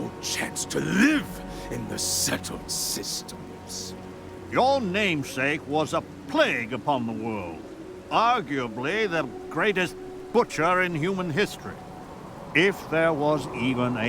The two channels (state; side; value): identical; both; correlation 1.00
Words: chance to live in the settled systems. Your namesake was a plague upon the world. Arguably the greatest butcher in human history. If there was even